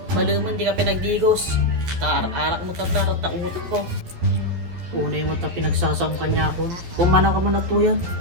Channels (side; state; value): left; late; 11 ms